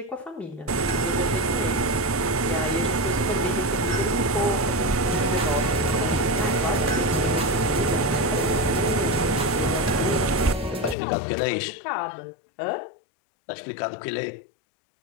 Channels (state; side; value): drops out; right; at 11.0 s